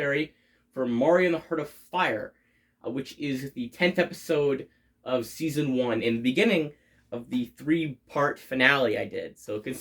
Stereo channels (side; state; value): both; identical; correlation 1.00